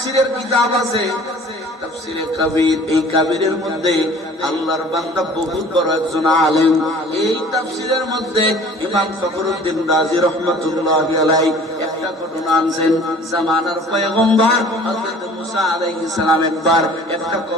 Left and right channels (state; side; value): normal; both; correlation 0.48